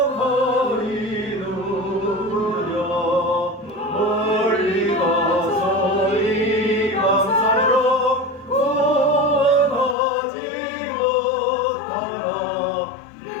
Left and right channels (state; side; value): drops out; right; at 10.0 s